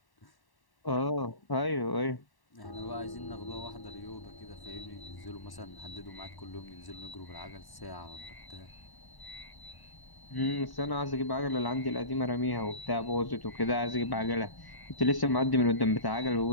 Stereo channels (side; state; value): right; late; 1.1 ms